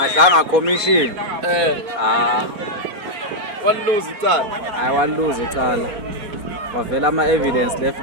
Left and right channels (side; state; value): left; late; 4.3 ms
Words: commission Walose icala. hayi waluza icala wavela ama-evidence